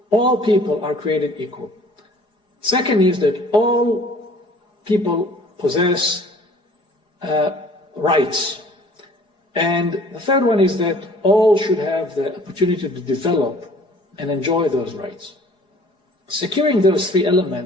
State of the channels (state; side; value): late; right; 4.8 ms